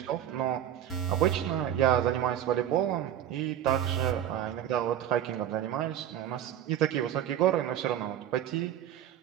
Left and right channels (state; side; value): quieter; left; 10.7 dB